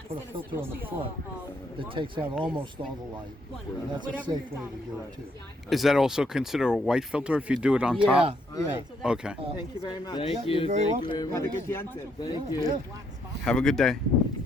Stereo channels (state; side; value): normal; both; correlation 0.73